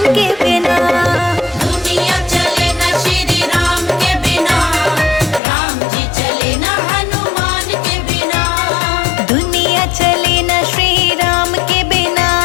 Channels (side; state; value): right; drops out; at 5.4 s